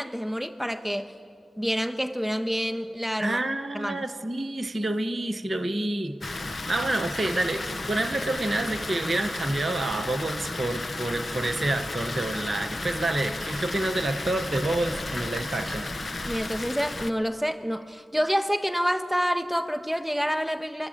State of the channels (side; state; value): both; normal; correlation 0.94